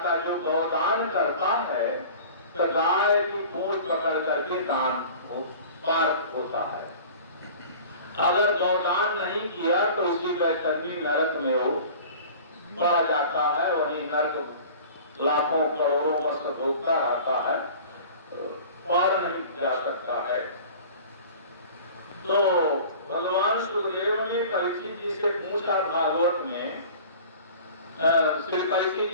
जो गौदान करता है तो गाय की पूंछ पकड़ करके दान पार होता है। अगर गौदान नहीं किया तो उसी बैतरणी नरक में वो पड़ जाता है। वही नरक लाखों करोड़ों वर्ष भोगता रहता है, पार नहीं जा सकता है। तो भगवान सुखदेव ने परीक्षित जी से पूछा, भागवत में श्री परीक्षित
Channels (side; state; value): both; inverted; correlation -0.42